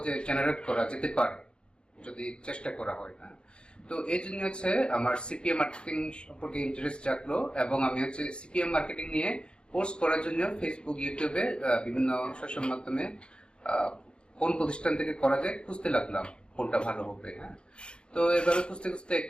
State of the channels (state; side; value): late; right; 0.053 ms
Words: জেনারেট করা যেতে পারে যদি চেষ্টা করা হয়। না তো এই জন্য হচ্ছে আমার সিপিএম মার্কেটিং সম্পর্কে ইন্টারেস্ট জাগলো, এবং আমি হচ্ছে সিপিএম মার্কেটিং নিয়ে কোর্স করার জন্য ফেসবুক, ইউটিউবে বিভিন্ন সোশ্যাল মাধ্যমে কোন প্রতিষ্ঠান থেকে করা যায় খুঁজতে লাগলাম, কোনটা ভালো হবে। হ্যাঁ, তো এভাবে খুঁজতে খুঁজতে